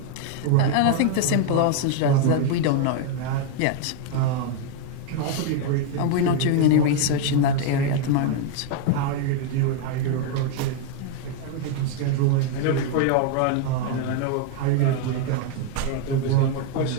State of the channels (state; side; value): different; both; correlation 0.00